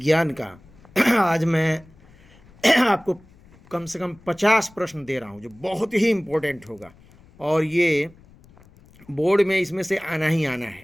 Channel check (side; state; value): left; noise; rumble, 26 dB below the sound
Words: का आज मैं आपको कम से कम 50 प्रश्न दे रहा हूँ जो बहुत ही इम्पोर्टेंट होगा, और ये बोर्ड में इसमें से आना ही आना